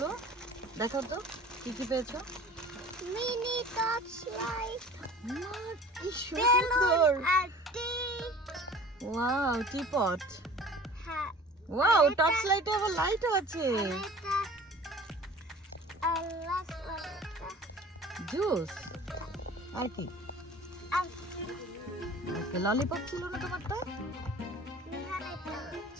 দেখো তো কি কি পেয়েছো। মিনি টর্চ লাইট, কি সুন্দর। আর টি। Wow, teapot. হ্যাঁ। ওয়াও, টর্চ লাইটে আবার লাইটও আছে। এটা আর লাস্ট ওয়ানটা জুস আর কি? আর ওকে, ললিপপ ছিল না তোমারটা? নিহান এটা।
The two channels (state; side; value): normal; both; correlation 0.44